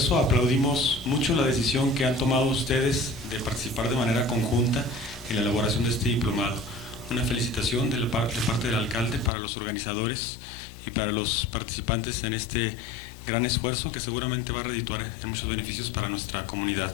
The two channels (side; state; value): right; drops out; at 9.3 s